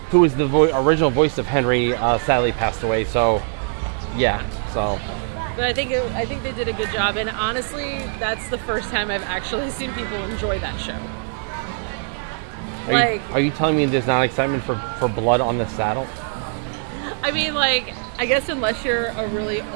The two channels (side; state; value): left; silent; 63 dB below the other